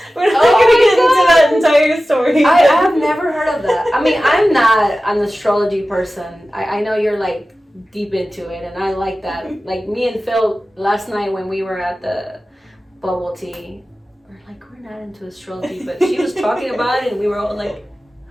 we're not going to get into that entire story. I have never heard of that. mean, I'm not an astrology person. I know you're like deep into it, and I like that. Like me and Phil last night when we were at the bubble tea, we're like, we're not into astrology, but she was talking about it, and we were all like,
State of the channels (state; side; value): normal; both; correlation 0.95